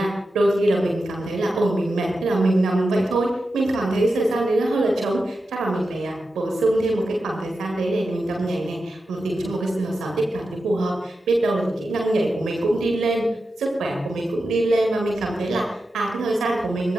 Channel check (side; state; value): both; normal; correlation 0.90